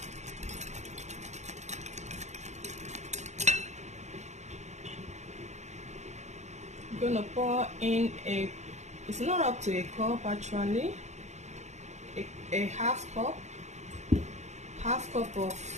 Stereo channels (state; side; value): late; left; 0.33 ms